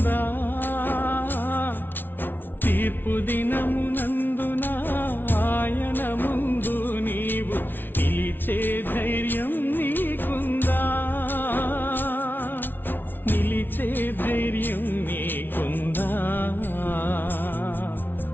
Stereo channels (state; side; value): late; right; 0.097 ms